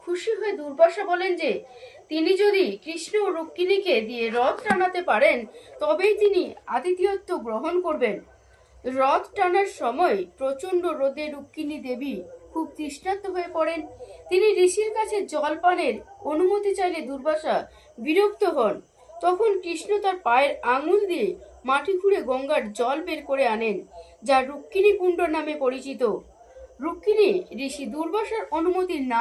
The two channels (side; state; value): both; identical; correlation 1.00